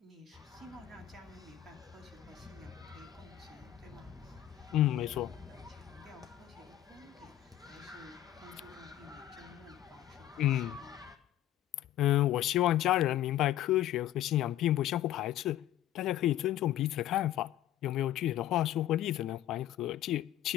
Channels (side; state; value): right; quieter; 12.8 dB